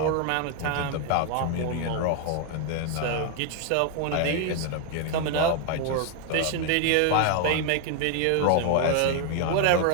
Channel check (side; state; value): both; different; correlation 0.01